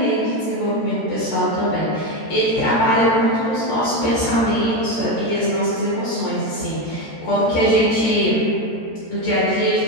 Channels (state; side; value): late; right; 13 ms